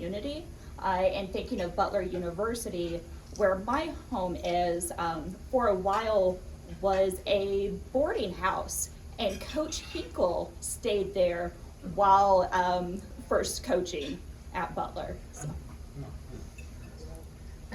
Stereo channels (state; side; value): identical; both; correlation 1.00